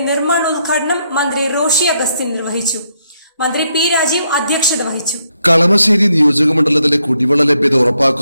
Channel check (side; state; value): both; inverted; correlation -0.77